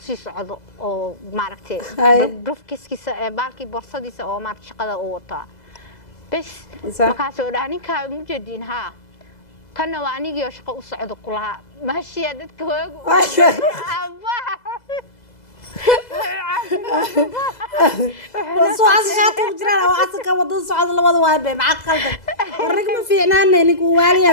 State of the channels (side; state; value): right; late; 2.0 ms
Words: sii socdo oo maaragtay brofkiisa baalkii borsadiisa oo maaragtay shaqada uu wataa bas markaas oo dhahay ninka muu jeedin ha kana waa anigii oo shaqo u socdo kulaha maashiya dadka hoogu وصوص شاطر وجرا وعسك ودن صعد لبد واي مع قلبك ورق ما فيعنانا نيك واليا